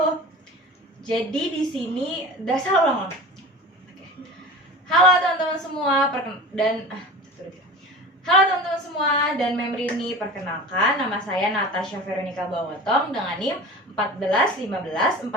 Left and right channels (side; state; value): both; normal; correlation 0.35